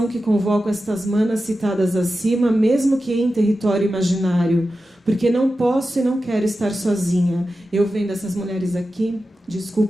que convoco estas manas citadas acima, mesmo que em território imaginário, porque não posso e não quero estar sozinha. Eu vendo essas mulheres aqui,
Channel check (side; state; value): both; normal; correlation 0.92